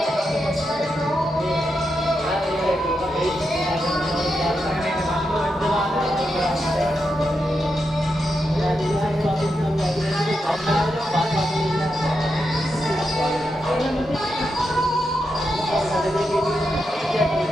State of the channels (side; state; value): both; normal; correlation 0.86